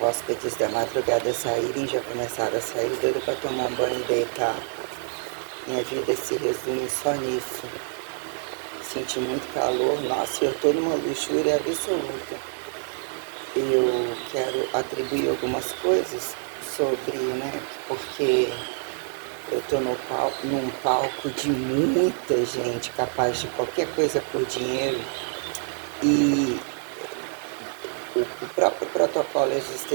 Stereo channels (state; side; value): silent; left; digital silence